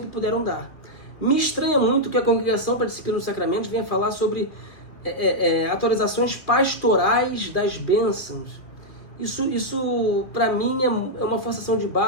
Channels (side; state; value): right; late; 2.5 ms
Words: puderam dar. Me estranha muito que a Congregação para a Disciplina dos Sacramentos venha falar sobre atualizações pastorais das bênçãos. Isso para mim é uma forçação de